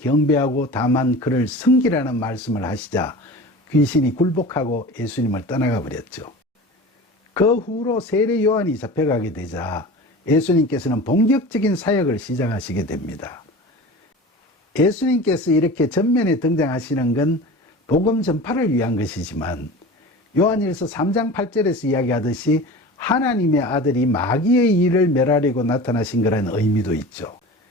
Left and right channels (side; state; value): both; normal; correlation 0.35